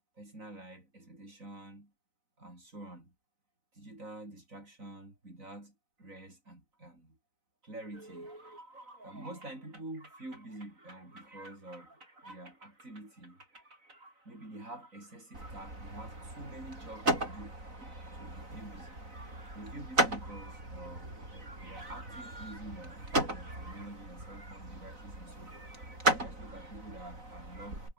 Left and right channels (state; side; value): late; left; 4.0 ms